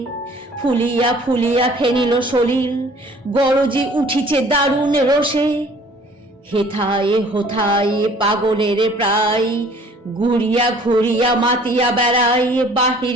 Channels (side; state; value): both; normal; correlation 0.53